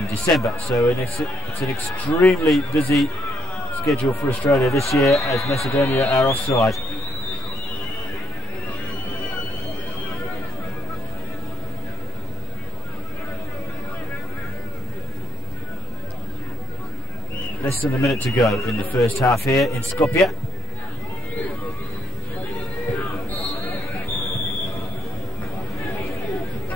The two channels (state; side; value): normal; both; correlation 0.67